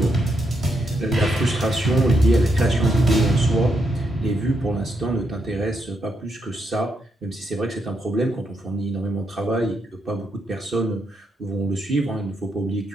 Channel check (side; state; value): both; normal; correlation 0.79